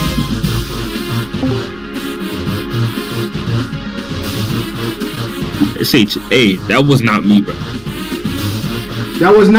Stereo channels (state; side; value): noise; right; rumble, 24 dB below the sound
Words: Hey, that was not me, bro. That was